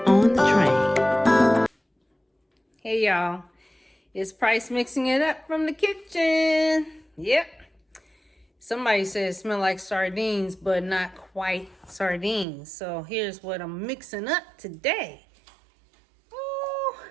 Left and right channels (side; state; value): left; drops out; at 12.5 s